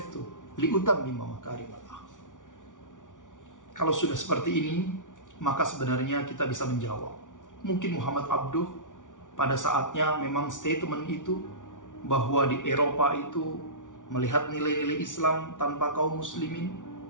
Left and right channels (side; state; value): right; late; 0.87 ms